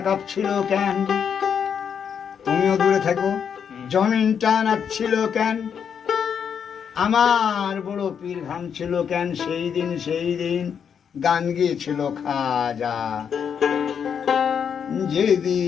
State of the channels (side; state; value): right; quieter; 7.5 dB